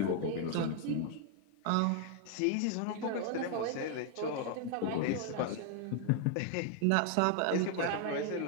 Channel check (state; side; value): different; both; correlation 0.00